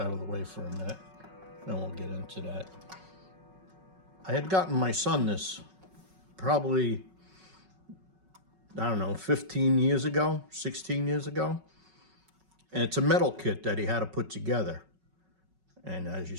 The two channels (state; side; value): late; left; 5.4 ms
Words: of the way for a minute, then we'll get into that. I had gotten my son this probably, I don't know, 15 years ago, 16 years ago. And it's a metal kit that he had to put together. And as you